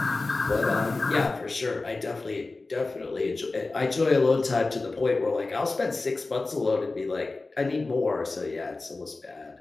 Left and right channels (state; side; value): quieter; right; 3.4 dB